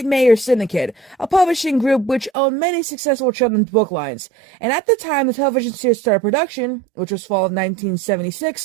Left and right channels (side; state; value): left; drops out; at 2.3 s